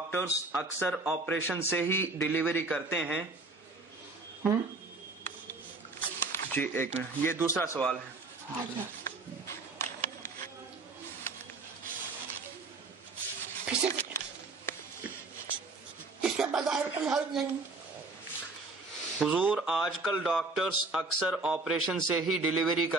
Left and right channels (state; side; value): quieter; left; 3.5 dB